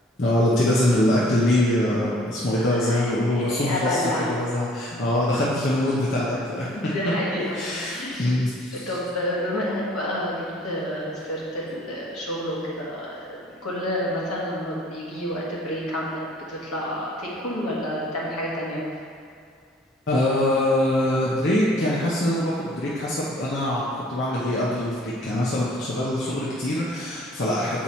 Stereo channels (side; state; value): both; normal; correlation 0.56